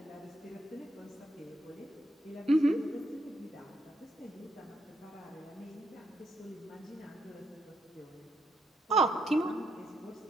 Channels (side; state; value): both; normal; correlation 0.77